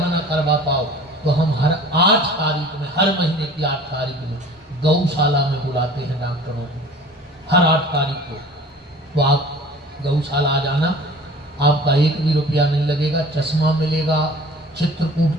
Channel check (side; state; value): both; normal; correlation 0.44